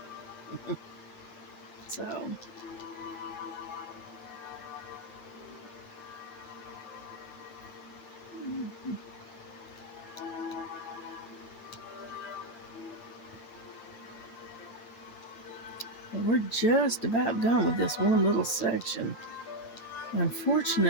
So, we're just about done with this one little section.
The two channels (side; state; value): right; late; 8.8 ms